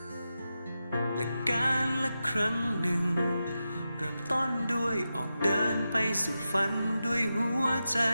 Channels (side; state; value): both; inverted; correlation -0.90